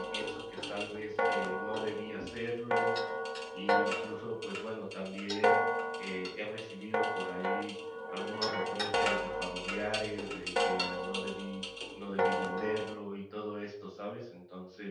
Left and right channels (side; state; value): both; identical; correlation 1.00